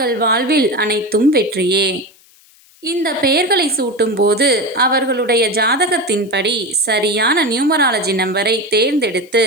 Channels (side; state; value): left; noise; hiss, 29 dB below the sound